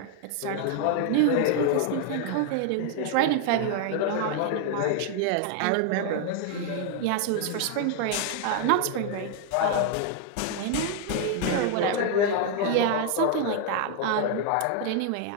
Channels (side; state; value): both; different; correlation 0.00